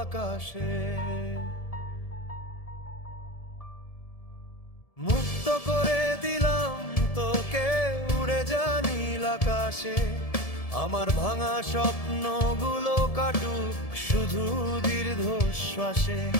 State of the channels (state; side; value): late; right; 1.7 ms